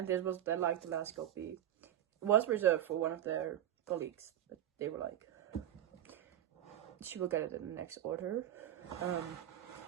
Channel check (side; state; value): left; quieter; 11.7 dB